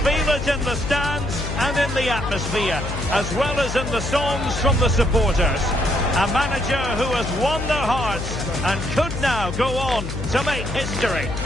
it in the stands and in the atmosphere, as well as in the songs from the supporters. A manager who has won their hearts and could now go on to make history.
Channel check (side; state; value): left; noise; hum, 6 dB below the sound